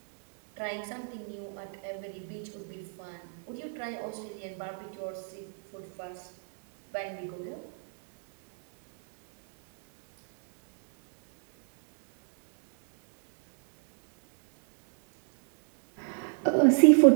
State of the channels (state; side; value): silent; left; digital silence